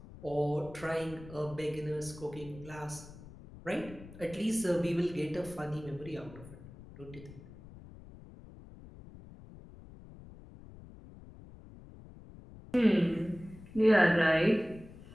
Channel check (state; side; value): noise; left; rumble, 18 dB below the sound